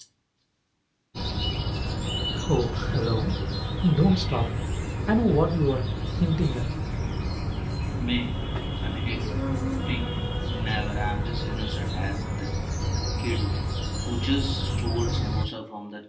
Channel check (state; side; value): identical; both; correlation 1.00